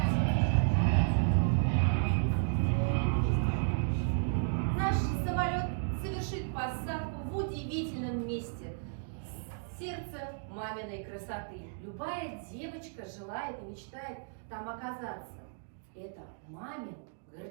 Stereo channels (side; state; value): left; silent; digital silence